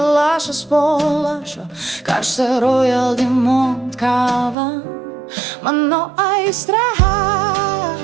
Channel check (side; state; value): left; drops out; at 4.5 s